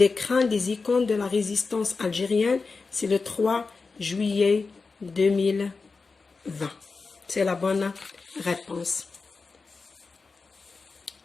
crânes des icônes de la résistance algérienne. C'est le 3 juillet 2020. C'est la bonne réponse.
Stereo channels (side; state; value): right; quieter; 4.4 dB